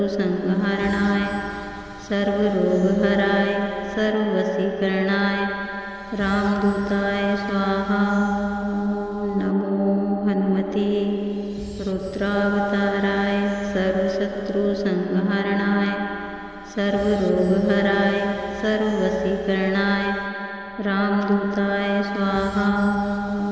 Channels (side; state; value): both; identical; correlation 1.00